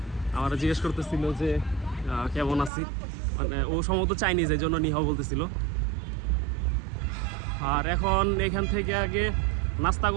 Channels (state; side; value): drops out; left; at 2.7 s